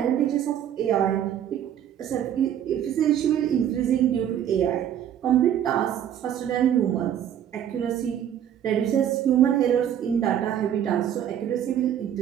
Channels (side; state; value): left; quieter; 10.0 dB